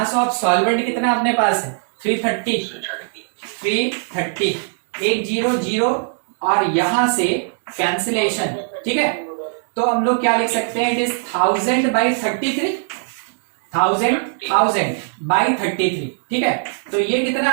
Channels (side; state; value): left; silent; 64 dB below the other